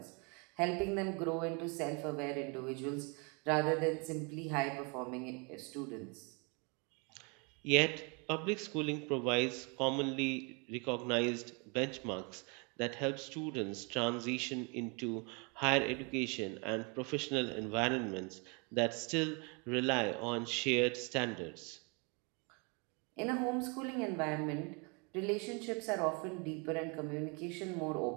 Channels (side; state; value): left; quieter; 32.7 dB